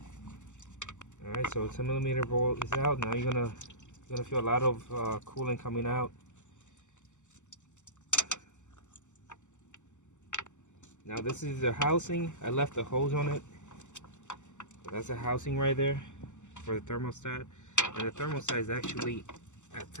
Alright, so 10mm bolt is out. Now you're gonna feel a lot of coolant coming out. Now this is the housing. I left the hose on it. So that's the housing right there for the thermostat. And the thermostat is actually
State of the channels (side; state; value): right; late; 0.84 ms